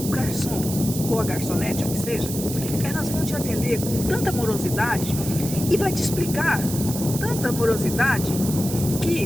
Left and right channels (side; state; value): right; noise; hiss, 8 dB below the sound